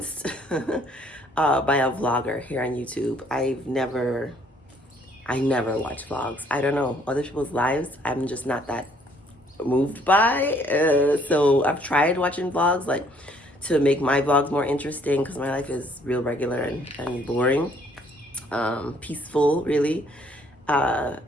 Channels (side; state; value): both; normal; correlation 0.63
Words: by a vlogger here on YouTube. I never watch vlogs. I don't know, other people's lives, I'm just not that moved by. So I've tried watching vlogs, like, to make my vlogs more interesting, because my life is real regular and boring, peaceful, really. Tried